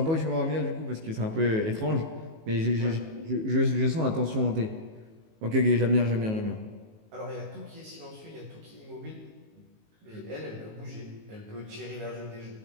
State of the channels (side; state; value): left; late; 19 ms